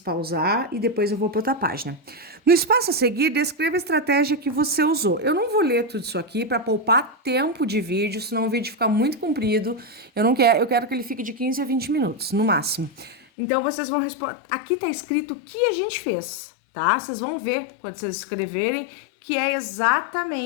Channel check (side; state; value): right; drops out; at 13.2 s